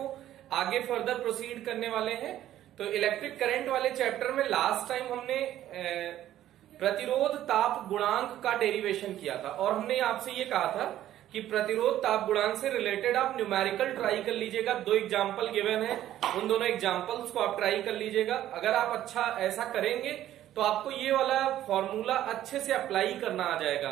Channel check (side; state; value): left; quieter; 12.7 dB